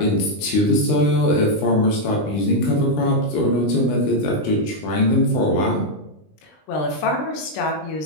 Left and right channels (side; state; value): right; late; 20 ms